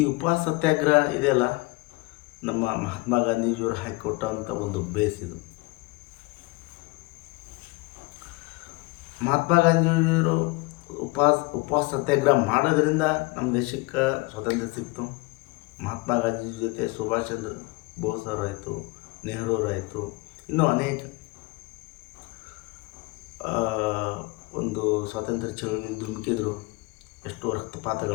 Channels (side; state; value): right; quieter; 24.7 dB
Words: ಉಪವಾಸ ಸತ್ಯಾಗ್ರಹ ಇದೆಯಲ್ಲ, ನಮ್ಮ ಮಹಾತ್ಮ ಗಾಂಧೀಜಿಯವರು ಹಾಕಿಕೊಟ್ಟಂಥ ಒಂದು ಬೇಸ್ ಇದು. ಮಹಾತ್ಮ ಗಾಂಧೀಜಿಯವರು ಉಪವಾಸ ಸತ್ಯಾಗ್ರಹ ಮಾಡೋದ್ರಿಂದ ನಮ್ಮ ದೇಶಕ್ಕೆ ಸ್ವಾತಂತ್ರ್ಯ ಸಿಕ್ತು. ಮಹಾತ್ಮ ಗಾಂಧೀಜಿ ಜೊತೆ ಸುಭಾಷ್ ಚಂದ್ರ ಬೋಸ್ ಅವರಾಯಿತು, ನೆಹರು ಅವರಾಯಿತು, ಇನ್ನೂ ಅನೇಕ ಒಂದು ಸ್ವಾತಂತ್ರ್ಯ ಚಳವಳಿ ಧುಮುಕಿದ್ರು. ಎಷ್ಟು